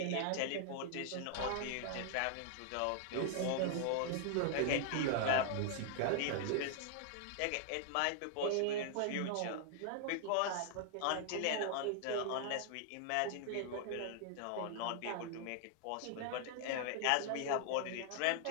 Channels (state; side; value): different; both; correlation 0.00